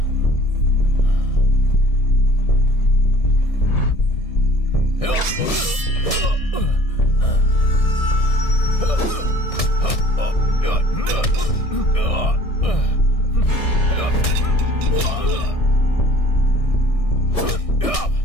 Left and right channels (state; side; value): late; right; 1.6 ms